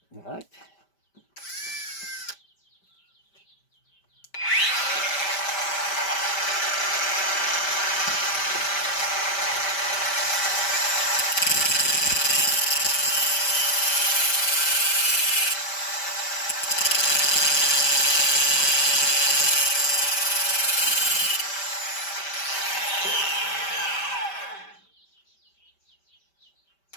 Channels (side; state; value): right; late; 5.1 ms